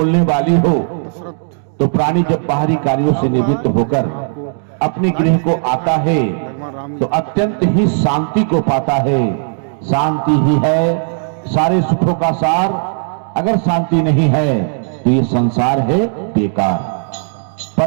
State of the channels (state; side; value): silent; left; digital silence